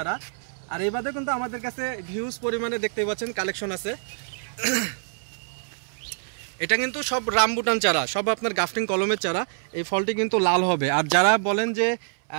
আর এই বাদে কিন্তু আমাদের কাছে হিউজ পরিমাণে দেখতে পাচ্ছেন কালেকশন আছে। এটা কিন্তু সব রামবুটান চারা, সব আপনার গাফটিং কলমের চারা। এই ফলটি কিন্তু লাল হবে। আর যারা বলেন যে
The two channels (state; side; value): silent; left; 61 dB below the other